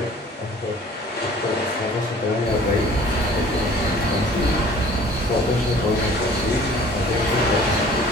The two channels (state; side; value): normal; both; correlation 0.50